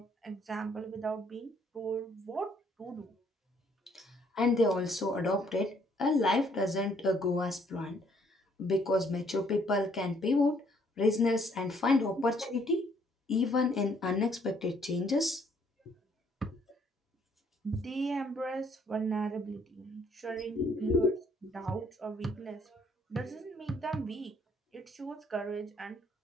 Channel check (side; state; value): both; normal; correlation 0.65